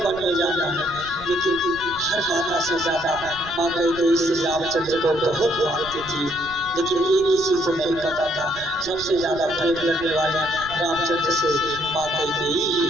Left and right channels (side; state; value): right; noise; rumble, 17 dB below the sound